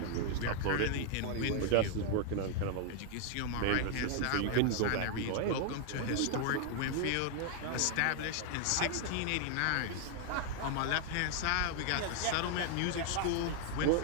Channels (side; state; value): both; different; correlation 0.00